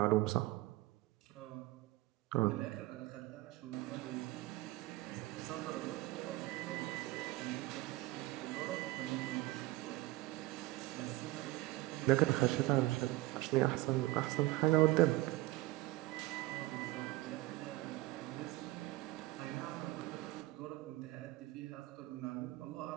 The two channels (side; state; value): left; quieter; 18.7 dB